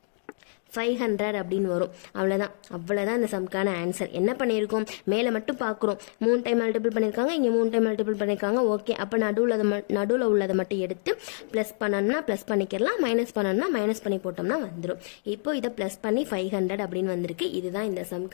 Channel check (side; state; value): right; silent; digital silence